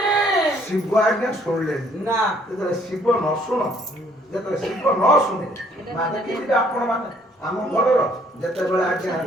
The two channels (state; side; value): normal; both; correlation 0.63